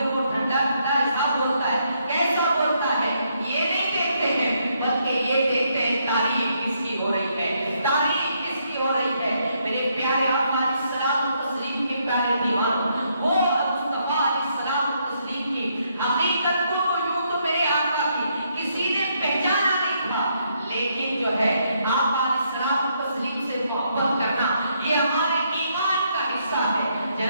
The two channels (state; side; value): inverted; both; correlation -0.75